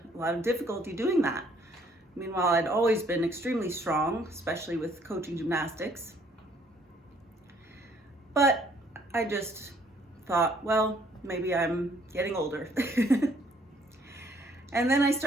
a lot of difficulty doing that. Meanwhile, I'd always been extremely strong, especially with coaching gymnastics. But I just thought, well, maybe I'm getting older. And then I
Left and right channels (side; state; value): both; normal; correlation 0.63